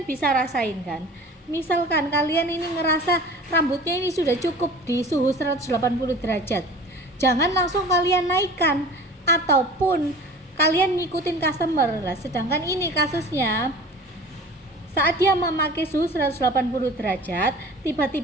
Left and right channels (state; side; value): normal; both; correlation 0.41